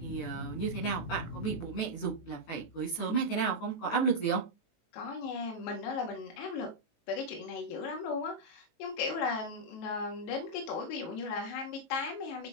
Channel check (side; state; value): right; late; 19 ms